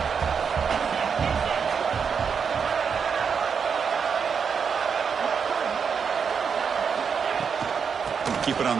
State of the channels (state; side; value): quieter; left; 6.4 dB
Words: Keep it on